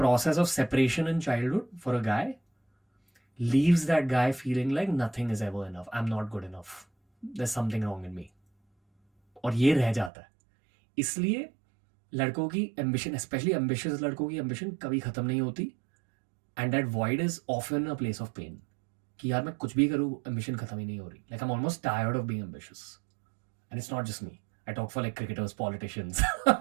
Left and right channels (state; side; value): drops out; left; at 10.1 s